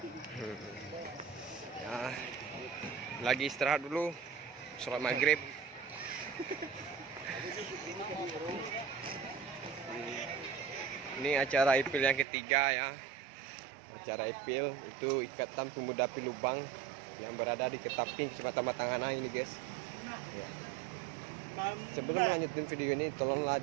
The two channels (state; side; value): drops out; left; at 12.2 s